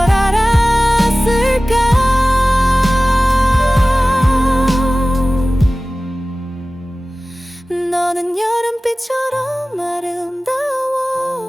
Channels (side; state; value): both; normal; correlation 0.97